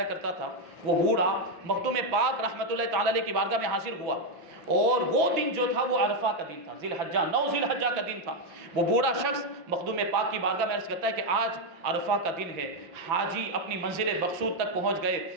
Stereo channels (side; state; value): left; late; 6.0 ms